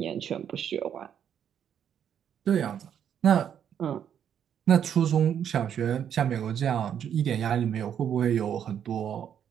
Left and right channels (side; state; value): left; quieter; 8.9 dB